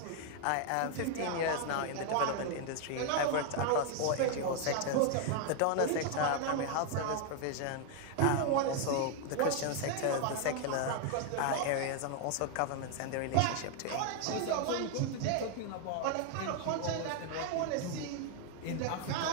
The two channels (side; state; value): both; different; correlation 0.00